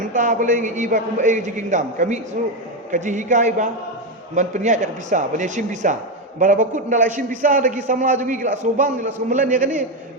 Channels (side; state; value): both; normal; correlation 0.10